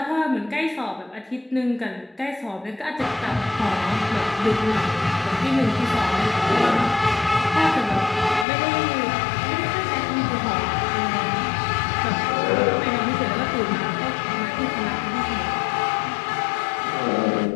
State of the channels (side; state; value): right; drops out; at 8.5 s